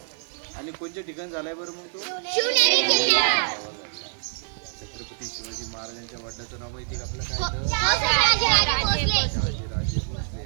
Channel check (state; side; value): silent; left; digital silence